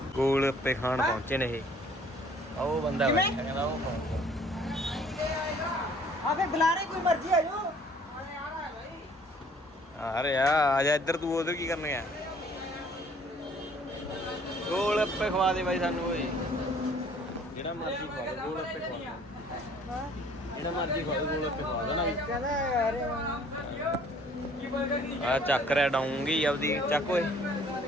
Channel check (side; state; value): both; normal; correlation 0.57